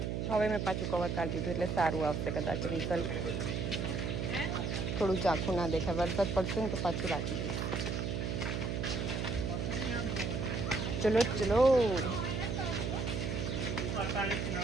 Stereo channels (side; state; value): right; noise; hum, 1 dB below the sound